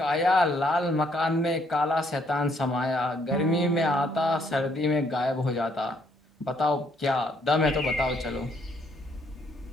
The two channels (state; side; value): normal; both; correlation 0.69